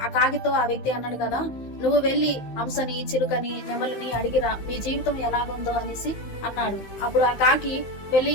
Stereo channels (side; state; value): right; late; 15 ms